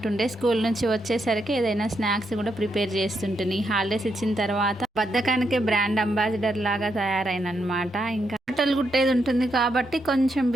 స్కూల్ నుంచి వచ్చేసరికి ఏదైనా స్నాక్స్ కూడా ప్రిపేర్ చేస్తుంటుంది. హాలిడేస్ ఇచ్చిన తర్వాత బద్ధకానికే బ్రాండ్ అంబాసిడర్ లాగా తయారైనమాట. ఇంకా బట్టలు కుట్టేది ఉంటుంది కాబట్టి కొంచెం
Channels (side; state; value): both; normal; correlation 0.81